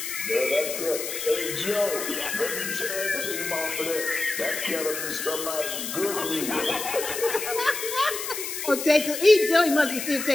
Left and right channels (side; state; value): left; noise; hiss, 5 dB below the sound